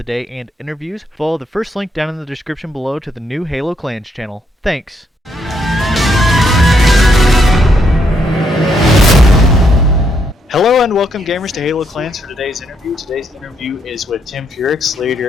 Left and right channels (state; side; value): normal; both; correlation 0.75